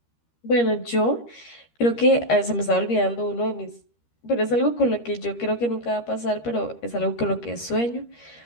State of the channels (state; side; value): late; right; 13 ms